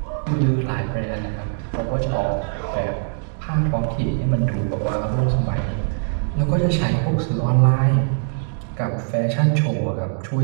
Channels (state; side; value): silent; left; digital silence